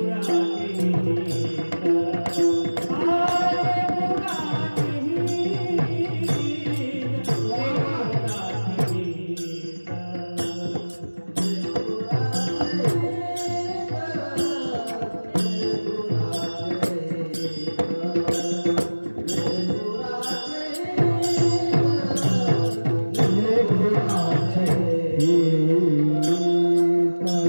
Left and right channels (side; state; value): both; inverted; correlation -1.00